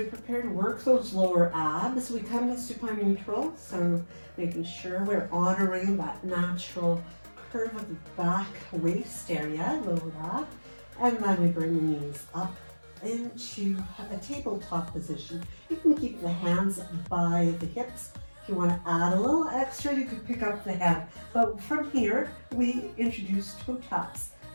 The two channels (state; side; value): inverted; both; correlation -1.00